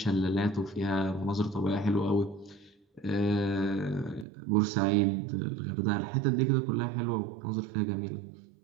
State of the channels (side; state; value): left; drops out; at 4.2 s